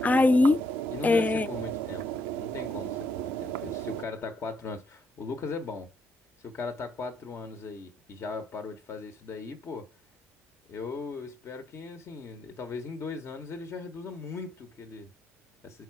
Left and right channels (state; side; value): normal; both; correlation 0.77